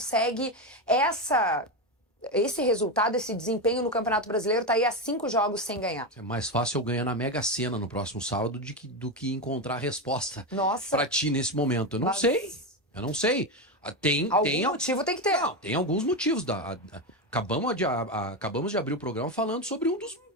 esse resultado, esse desempenho no Campeonato Brasileiro, tá aí há 5 jogos sem ganhar? É mais fácil eu ganhar na Mega Sena no próximo sábado do que encontrar a resposta pra ti nesse momento. Eu não sei. Eu não sei. Algum motivo tem que ter. Não, tem alguns motivos. Acabamos de abrir o programa falando sobre um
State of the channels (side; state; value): both; normal; correlation 0.13